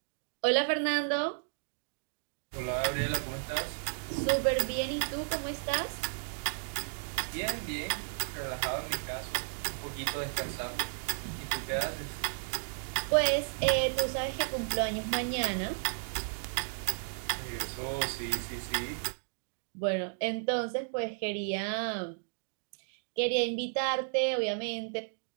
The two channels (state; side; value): silent; left; digital silence